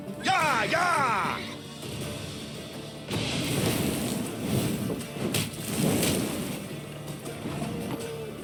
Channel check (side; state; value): both; identical; correlation 1.00